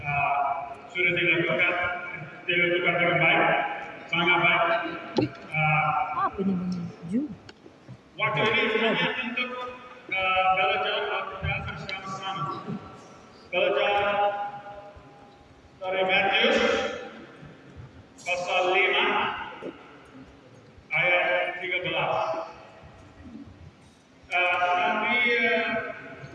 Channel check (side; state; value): both; identical; correlation 1.00